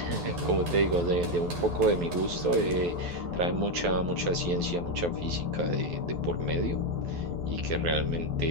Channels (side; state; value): left; late; 12 ms